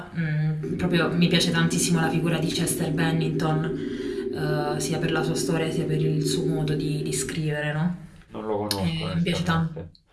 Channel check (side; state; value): both; identical; correlation 1.00